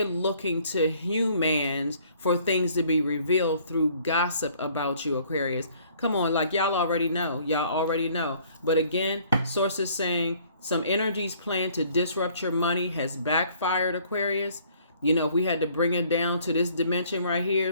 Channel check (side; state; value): both; inverted; correlation -0.59